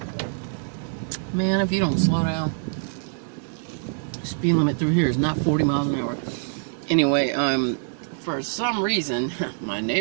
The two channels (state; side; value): silent; left; 62 dB below the other